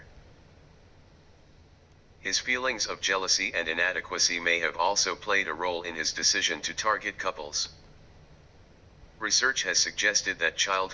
His feelings of jealousy and inadequacy may have also played a role in his decision to target couples. Research has suggested that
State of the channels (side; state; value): both; identical; correlation 1.00